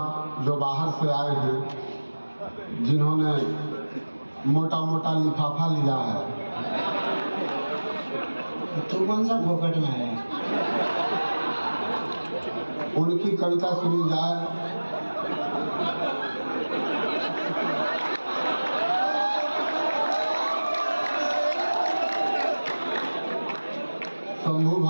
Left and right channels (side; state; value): both; inverted; correlation -1.00